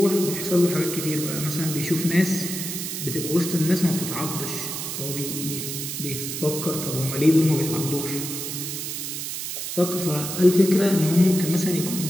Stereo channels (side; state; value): right; noise; hiss, 5 dB below the sound